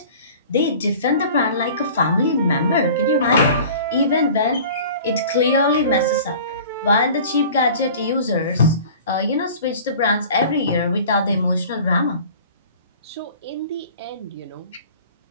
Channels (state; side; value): inverted; both; correlation -0.44